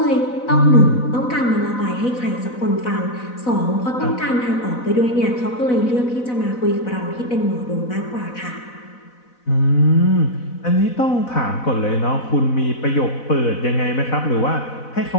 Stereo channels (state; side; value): late; right; 4.0 ms